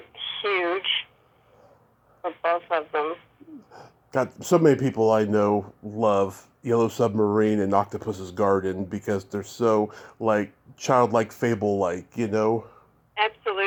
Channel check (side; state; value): both; identical; correlation 1.00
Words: huge for both of them. God, so many people I know love Yellow Submarine and Octopus's Garden because they're so like childlike, fable-like,